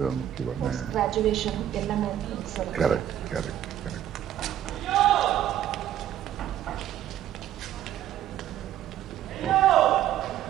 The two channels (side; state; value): left; quieter; 11.5 dB